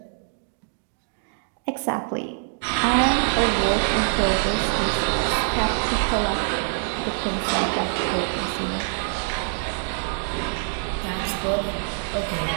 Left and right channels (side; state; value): left; silent; digital silence